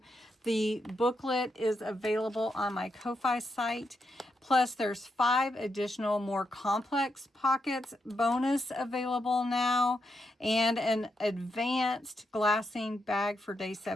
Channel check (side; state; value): both; normal; correlation 0.83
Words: The booklet is available on my Ko-Fi site. Plus, there's 5 additional more complex pockets bonus available now, and an advanced glassine bag for day